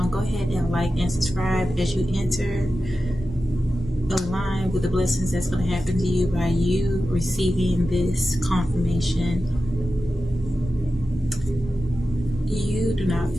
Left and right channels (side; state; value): both; normal; correlation 0.93